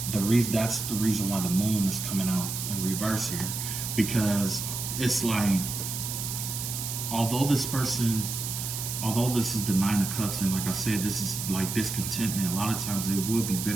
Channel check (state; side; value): noise; right; hiss, 4 dB below the sound